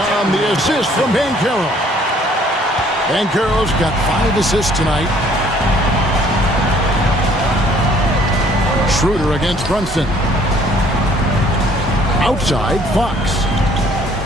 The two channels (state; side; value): normal; both; correlation 0.59